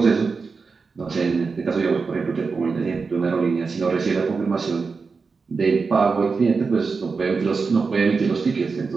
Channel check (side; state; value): left; quieter; 4.7 dB